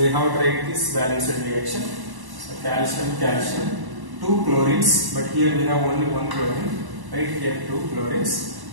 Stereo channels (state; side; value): late; left; 1.1 ms